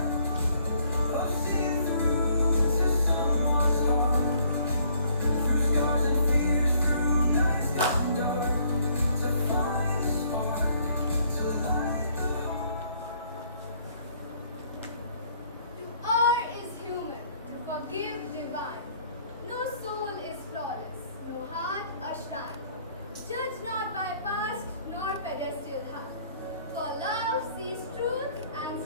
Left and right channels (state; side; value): inverted; both; correlation -0.63